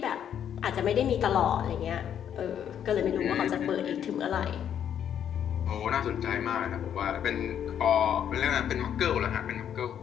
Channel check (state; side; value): quieter; right; 9.3 dB